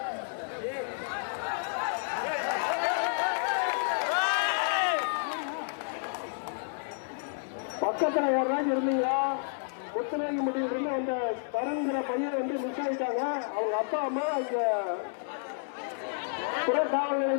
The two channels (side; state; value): right; silent; 57 dB below the other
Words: பக்கத்துல ஒரு நாள் இருந்தீங்களா? முத்துநாயக்கம்பட்டி இருந்து அந்த தருங்கிற பையன் வந்து மிஸ் ஆயிட்டாங்க. அவங்க அப்பா அம்மா இங்க புறக்காவல்